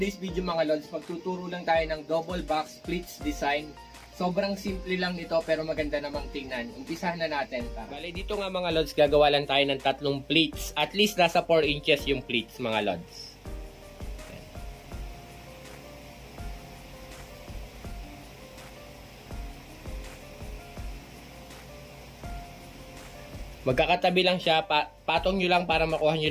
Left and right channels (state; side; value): identical; both; correlation 1.00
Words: video mga lods. Magtuturo lang tayo ng double box splits design. Sobrang simple lang nito pero maganda namang tingnan. Umpisahan na natin. Bale dito nga mga lods, gagawa lang tayo ng 3 pleats. At least nasa 4 inches yung pleats mga lods. Magkakatabi lang siya, patong nyo lang para makuha